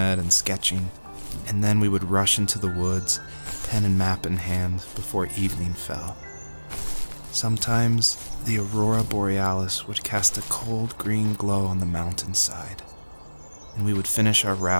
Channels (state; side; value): inverted; both; correlation -1.00